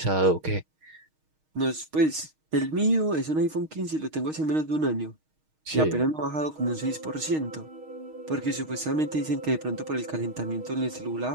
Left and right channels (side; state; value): left; late; 6.4 ms